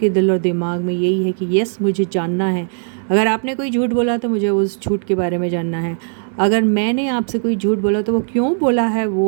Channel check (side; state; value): left; silent; 59 dB below the other